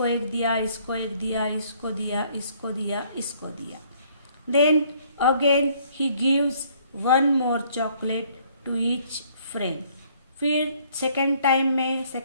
एक दिया, इसको एक दिया, इसको दिया, इसको दिया, इसको दिया. Then again he gives 1 more chocolate to each friend. फिर सेकेंड टाइम में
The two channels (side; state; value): both; inverted; correlation -0.62